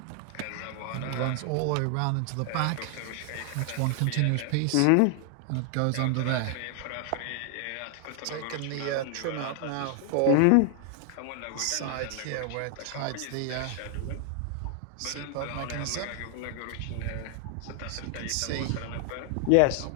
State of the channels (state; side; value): different; both; correlation 0.00